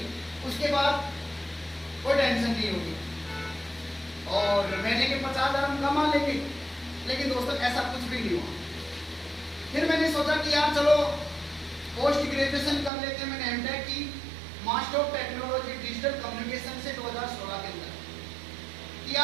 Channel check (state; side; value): drops out; left; at 12.9 s